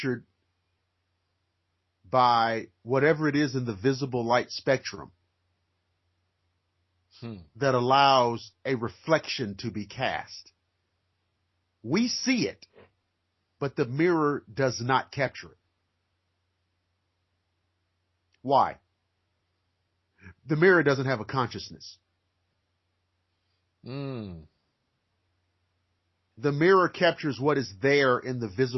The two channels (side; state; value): both; identical; correlation 1.00